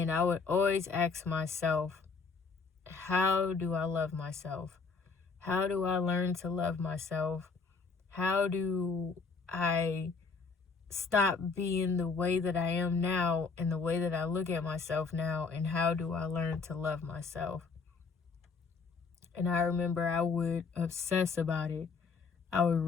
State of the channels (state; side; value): quieter; right; 4.7 dB